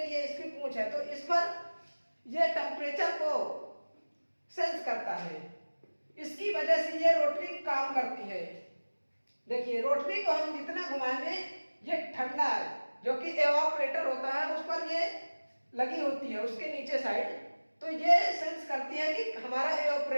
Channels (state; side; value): inverted; both; correlation -1.00